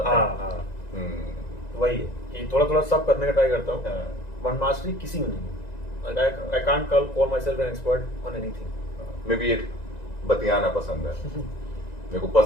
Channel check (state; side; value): late; right; 1.9 ms